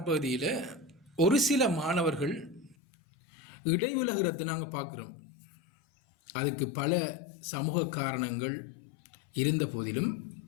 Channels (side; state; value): right; drops out; at 2.8 s